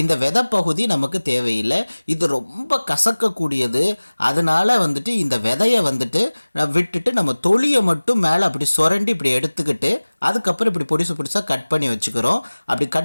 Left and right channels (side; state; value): both; inverted; correlation -1.00